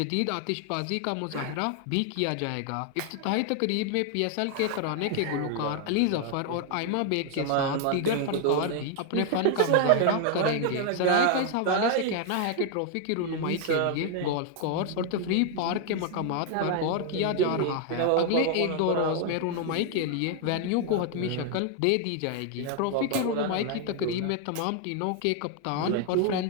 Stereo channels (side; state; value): both; different; correlation 0.00